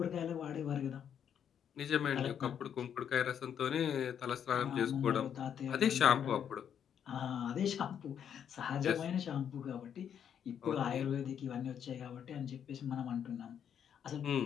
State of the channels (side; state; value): right; quieter; 8.6 dB